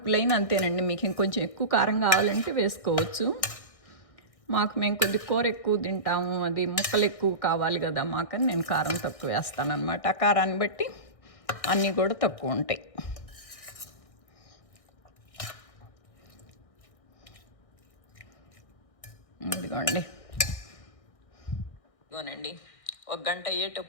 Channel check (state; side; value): late; right; 1.6 ms